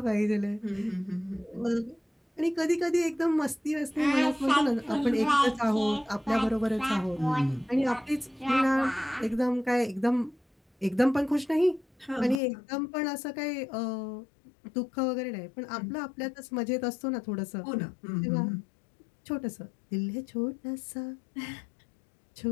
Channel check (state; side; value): drops out; right; at 12.4 s